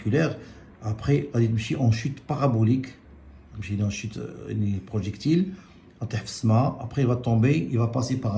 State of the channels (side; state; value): both; identical; correlation 1.00